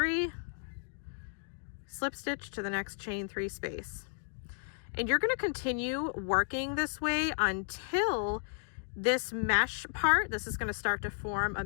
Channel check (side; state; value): right; silent; digital silence